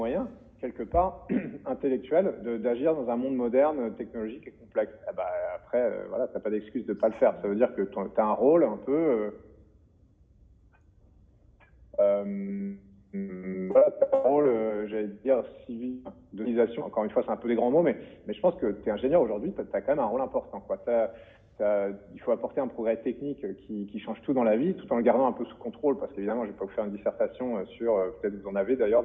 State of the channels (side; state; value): both; identical; correlation 1.00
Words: quelque part, intellectuels, d'agir dans un monde moderne, technologique et complexe. Après, t'as pas d'excuse de pas le faire. Ça veut dire que tu as un rôle un peu... t'as un rôle, j'allais dire, civil, d'organisation. Encore une fois, c'est un peu des grands mots, mais je pense que tu es ingénieur aujourd'hui, tu as quand même un rôle important, quoi. Il faut apporter un progrès technique qui change tout dans la vie, tout en le gardant un peu sous contrôle, parce qu'évidemment, je vais pas vous faire une dissertation sur, peut-être vous en avez d'ailleurs